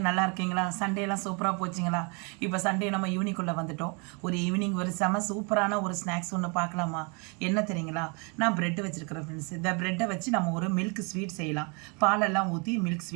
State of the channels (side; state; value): left; quieter; 33.6 dB